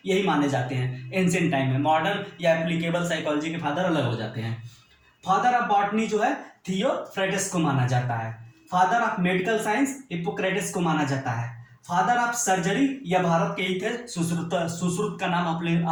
यही माने जाते हैं एंशिएंट टाइम में। मॉडर्न या एप्लीकेबल साइकोलॉजी के फादर अलग हो जाते हैं। फादर ऑफ बॉटनी जो है थियोफ्रेटस को माना जाता है। Father of medical science Hippocrates को माना जाता है। फादर ऑफ सर्जरी, यह भारत के ही थे, सुश्रुत का नाम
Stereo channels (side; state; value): both; identical; correlation 1.00